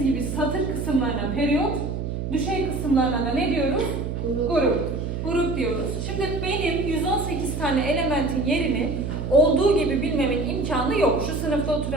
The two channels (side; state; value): right; noise; hum, 4 dB below the sound